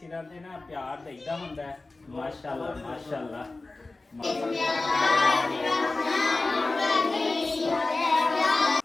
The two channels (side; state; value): right; quieter; 3.3 dB